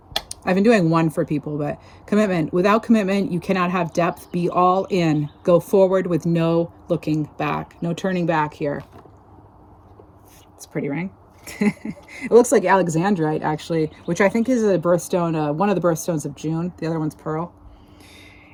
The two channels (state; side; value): identical; both; correlation 1.00